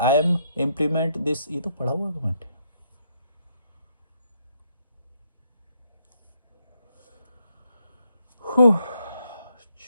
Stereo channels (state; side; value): inverted; both; correlation -0.74